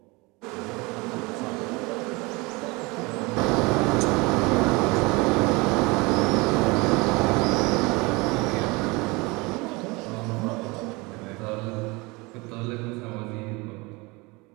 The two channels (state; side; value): quieter; left; 25.3 dB